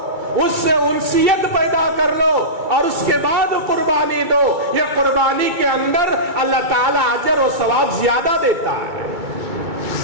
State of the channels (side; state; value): left; late; 2.3 ms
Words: اس سے انسیت پیدا کر لو, اور اس کے بعد قربانی دو. یہ قربانی کے اندر اللہ تعالیٰ اجر و ثواب زیادہ دیتا ہے.